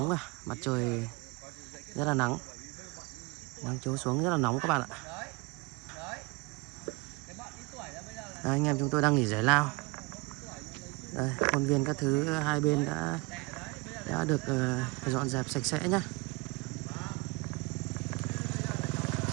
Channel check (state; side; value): quieter; left; 26.9 dB